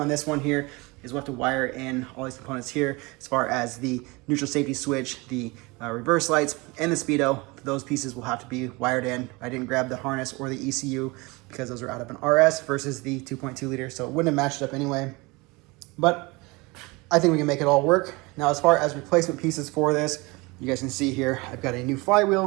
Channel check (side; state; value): left; quieter; 24.9 dB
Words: this one here is we'll have to wire in all these components here as far as the neutral safety switch, the reverse lights, and the speedo. Those pieces will have to be wired in. I didn't grab the harness or the ECU because those are out of an RS versus the 2.2 liter, so it wouldn't have matched up anyway. But I think we can make it all work. Now, as far as replacement pieces for this, you guys can see here, I've got a new